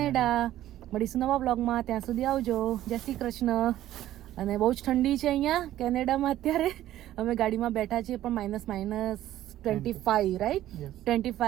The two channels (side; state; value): left; quieter; 13.4 dB